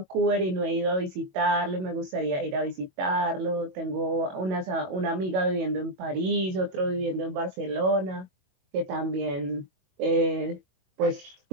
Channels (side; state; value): left; late; 22 ms